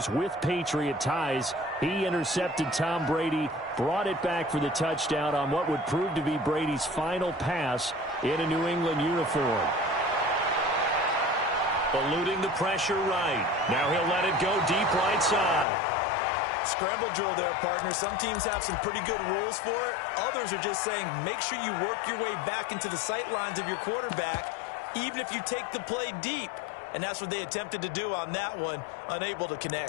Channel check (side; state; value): right; drops out; at 15.7 s